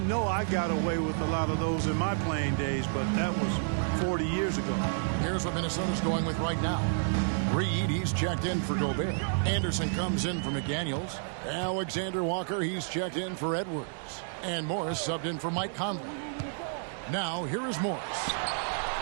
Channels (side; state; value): left; silent; digital silence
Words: I got away with a lot of those in my playing days, but that was 40 years ago. Here's what Minnesota's going with right now. Reed, he's checked in for Gobert. Anderson comes in for McDaniels. Alexander Walker, he's checked in for Edwards. And Morris subbed in for Mike Conley. Now, here is Morris.